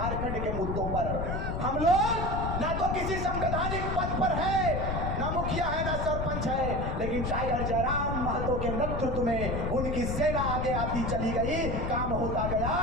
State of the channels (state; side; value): noise; left; rumble, 2 dB below the sound